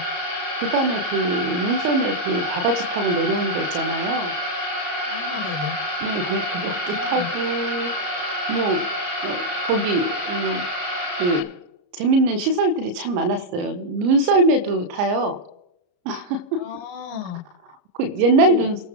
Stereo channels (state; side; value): late; left; 34 ms